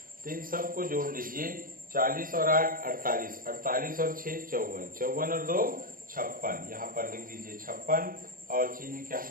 तो इन सब को जोड़ लीजिए, 40 और 8 48, 48 और 6 54, 54 और 2 56, यहाँ पर लिख दीजिए 56 और चिन्ह क्या हो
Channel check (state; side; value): late; left; 0.41 ms